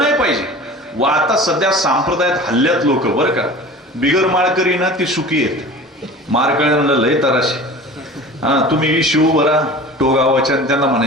पाहिजे. व आता सध्या संप्रदायात हल्ल्यात लोक बरं का. बिगर माळकरी ना ती सुखी आहेत, माळकऱ्यांना लय तराशी. तुम्ही शिव बरा टोगावाच्या त्यांना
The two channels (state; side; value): normal; both; correlation 0.39